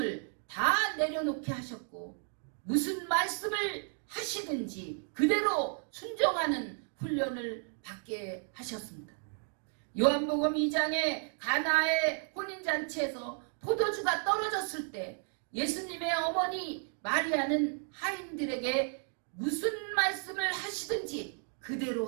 다 내려놓게 하셨고 무슨 말씀을 하시든지 그대로 순종하는 훈련을 받게 하셨습니다. 요한복음 2장에 가나의 혼인잔치에서 포도주가 떨어졌을 때 예수님의 어머니 마리아는 하인들에게 무슨 말씀을 하시든지 그대로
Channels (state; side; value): silent; left; 56 dB below the other